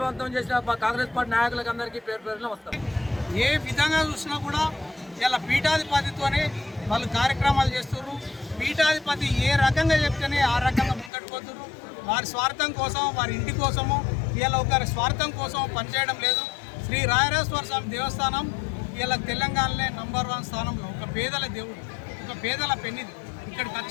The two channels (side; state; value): right; drops out; at 11.1 s